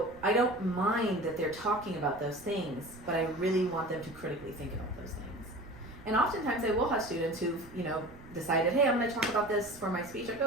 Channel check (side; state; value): right; noise; rumble, 20 dB below the sound